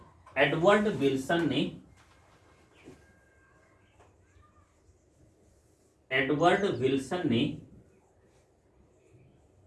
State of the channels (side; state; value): both; identical; correlation 1.00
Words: एडवर्ड विल्सन ने एडवर्ड विल्सन ने